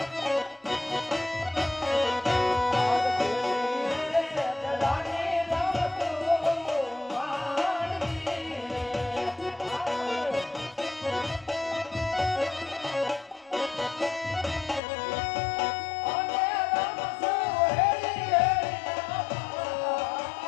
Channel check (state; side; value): drops out; right; at 14.8 s